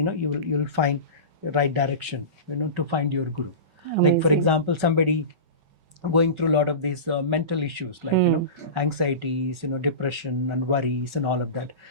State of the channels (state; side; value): late; left; 5.3 ms